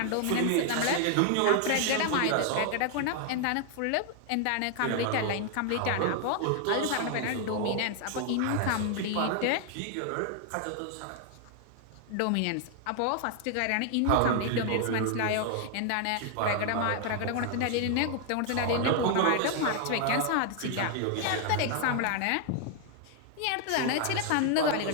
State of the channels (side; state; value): both; different; correlation 0.00